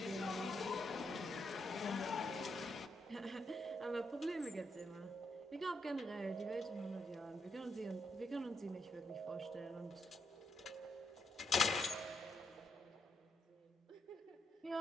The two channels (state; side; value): normal; both; correlation 0.79